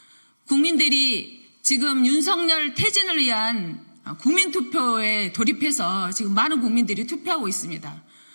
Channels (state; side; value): inverted; both; correlation -1.00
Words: 국민들이 지금 윤석열 퇴진을 위한 국민투표에 돌입해서 지금 많은 국민들이 투표하고 있습니다.